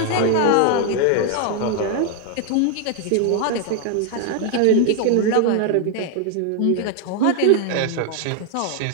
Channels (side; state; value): both; different; correlation 0.00